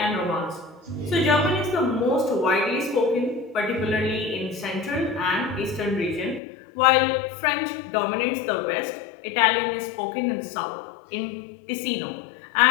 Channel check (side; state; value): right; drops out; at 6.4 s